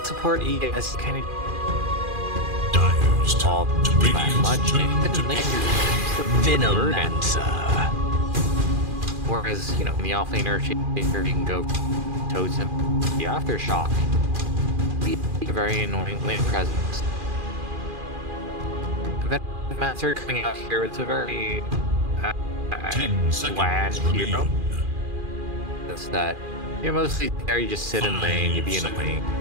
support ES, kind of Dire's all turn to that Radiant's much. turn to Then ban. you're Venomancer. Whereas, you know, in the offlane Earthshaker, you can go Totem, the Aftershock. Be a very annoying lane presence. Venomancer coming out here, it's a very 10 bland seconds hero. remain. That's that. You're mostly there, you just sit in lane, you be in the lane.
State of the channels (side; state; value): left; late; 2.4 ms